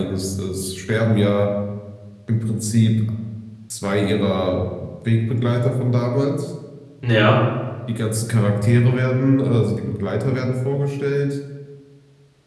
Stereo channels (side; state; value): both; identical; correlation 1.00